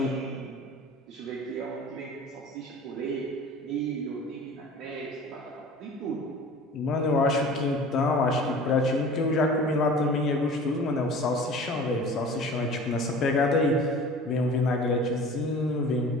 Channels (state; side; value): normal; both; correlation 0.41